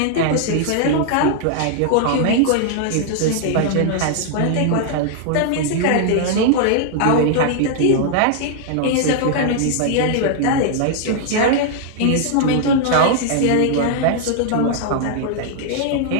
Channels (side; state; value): both; different; correlation -0.01